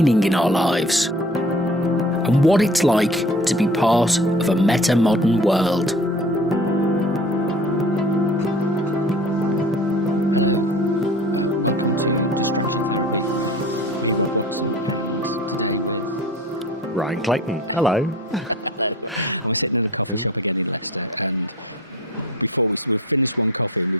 in our lives and what it's like to be part of a meta-modern world. Hello, welcome to Distraction Therapy with me, Rob Watson, and today with Ryan Clayton. Hello. Hello. And we're sitting in a coffee shop again in Leicester, and before we've finished one coffee and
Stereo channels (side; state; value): both; normal; correlation 0.43